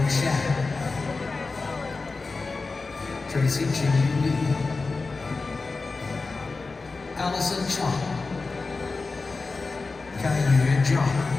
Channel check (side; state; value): right; quieter; 3.9 dB